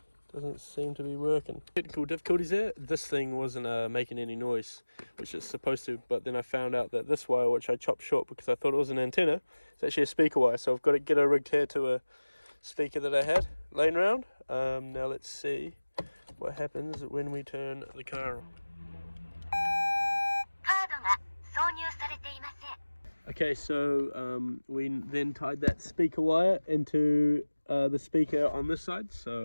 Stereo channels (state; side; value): inverted; both; correlation -1.00